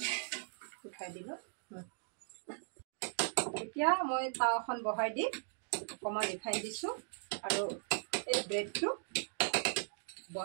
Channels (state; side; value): silent; left; digital silence